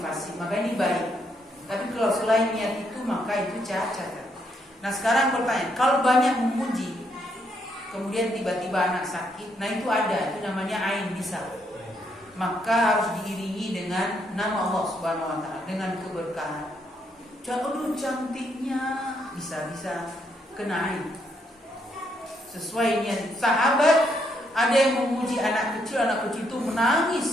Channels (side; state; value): both; normal; correlation 0.75